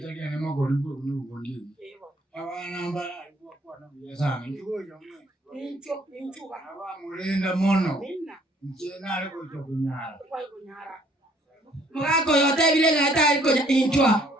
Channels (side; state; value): both; normal; correlation 0.62